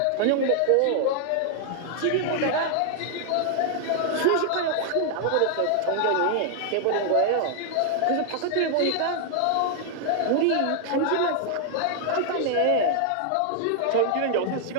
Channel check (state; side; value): different; both; correlation 0.00